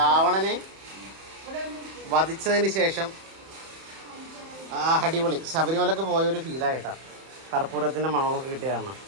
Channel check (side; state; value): left; late; 31 ms